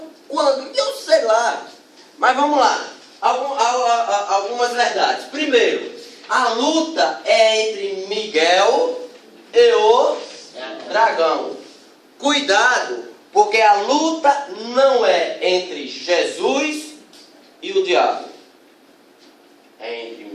quando? Eu sei lá. Mas vamos lá. Algumas verdades. Primeiro, a luta é entre Miguel e o dragão. Cuidado, porque a luta não é entre Jesus e o diabo. É entre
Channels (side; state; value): both; identical; correlation 1.00